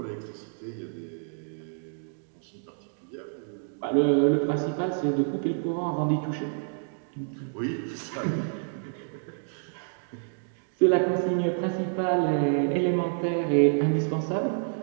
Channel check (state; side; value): silent; left; digital silence